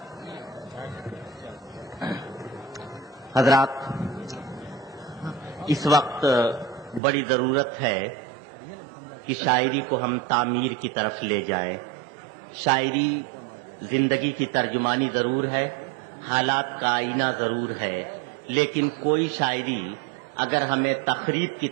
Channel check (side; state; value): left; drops out; at 7.0 s